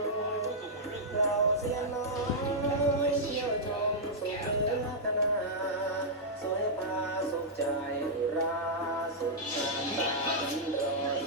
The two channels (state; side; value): normal; both; correlation -0.09